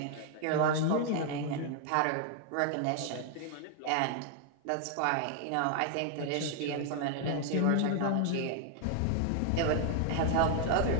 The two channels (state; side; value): different; both; correlation 0.00